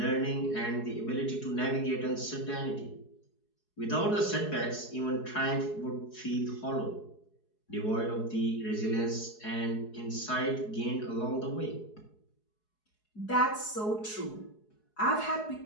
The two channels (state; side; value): late; right; 4.7 ms